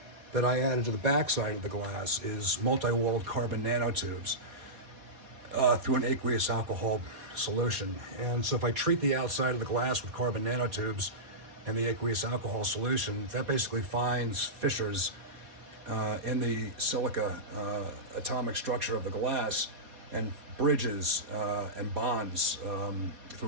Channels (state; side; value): late; left; 4.2 ms